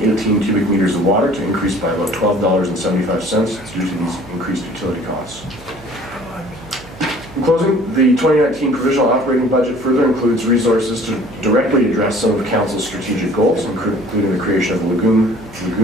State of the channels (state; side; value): noise; right; hum, 21 dB below the sound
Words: cubic meters of water to increase by about $12.75 due to these increased utility costs. In closing, the 2019 provisional operating budget further includes resources to directly address some of council's strategic goals, including the creation of lagoon